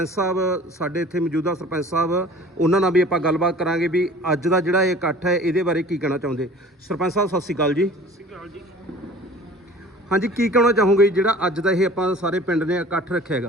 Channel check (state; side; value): normal; both; correlation 0.46